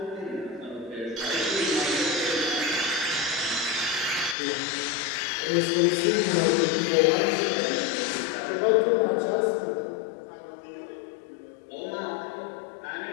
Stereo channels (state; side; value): drops out; right; at 4.4 s